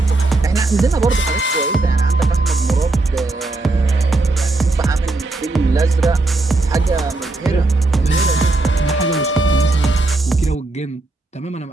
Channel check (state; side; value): quieter; left; 3.1 dB